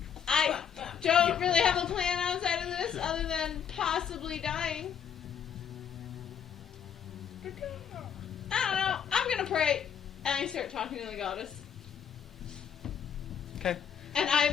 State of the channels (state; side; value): quieter; right; 7.9 dB